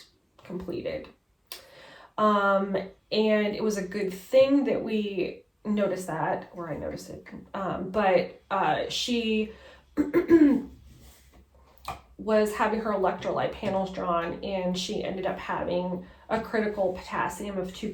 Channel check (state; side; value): identical; both; correlation 1.00